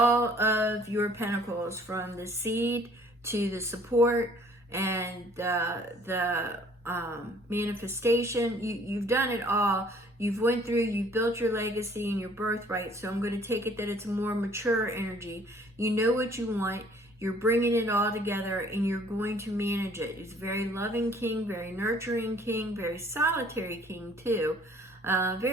of your pentacles, from the seed to the support and the manifestation. You've done it all. You've went through, you've built your legacy and your birthright. So I'm going to take it that it's a more mature energy. You know what you want. You're bringing it all together, and you're going to manage it. He's a very loving king, very nurturing king, very solitary king too.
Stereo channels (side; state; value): both; normal; correlation 0.57